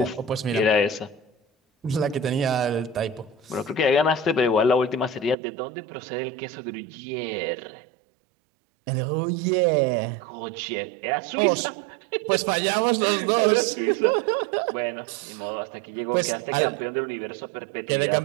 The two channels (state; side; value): drops out; left; at 5.4 s